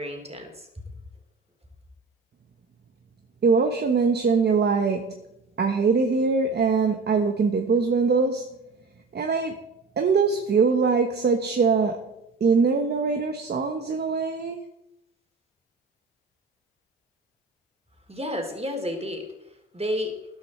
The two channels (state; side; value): quieter; left; 4.3 dB